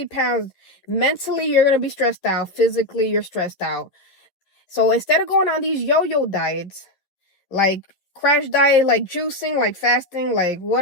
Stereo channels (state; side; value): late; right; 10 ms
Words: pounds, mentally, you're going to be stressed out. Physically, you're stressed out. So instead of going on these yo-yo diets, like crash diet, like juicing, like fasting, like